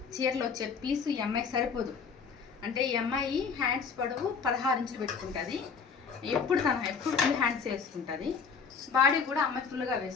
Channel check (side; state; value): right; quieter; 5.8 dB